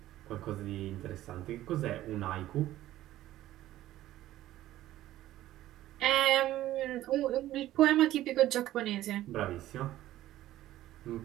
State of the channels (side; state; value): left; quieter; 14.4 dB